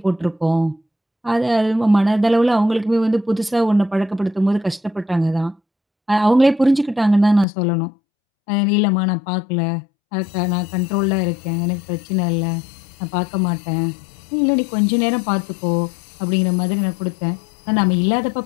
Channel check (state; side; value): drops out; right; at 7.5 s